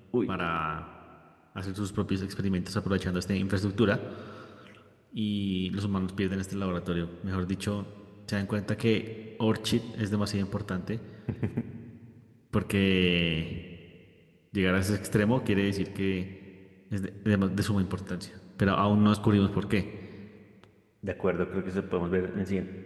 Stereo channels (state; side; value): identical; both; correlation 1.00